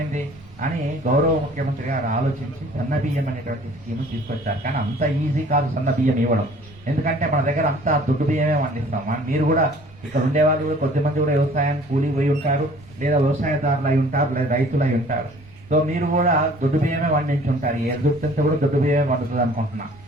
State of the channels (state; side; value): noise; right; rumble, 23 dB below the sound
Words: ఏంది అని గౌరవ ముఖ్యమంత్రి గారు ఆలోచించి సన్న బియ్యం అనేటువంటి స్కీమ్ తీసుకొచ్చారు. కానీ అంత ఈజీ కాదు సన్న బియ్యం ఇవ్వడం, ఎందుకంటే మన దగ్గర అంతా దొడ్డు బియ్యమే పండిస్తాం. మీరు కూడా ఇక్కడ ఉండే వాళ్ళు కూడా కొద్దిమంది కూడా వ్యవసాయానికి కూలి పోయి ఉంటారు, లేదా వ్యవసాయదారులు అయి ఉంటారు, లేదా రైతులు అయి ఉంటారు. సో మీరు కూడా దొడ్డు బియ్యమే పండించి ఉంటారు. ఏ దొడ్డు కూడా దొడ్డు బియ్యమే పండుతుంది అనుకుంటున్నా.